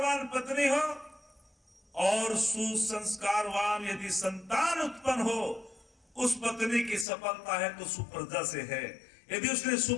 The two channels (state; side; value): drops out; right; at 7.1 s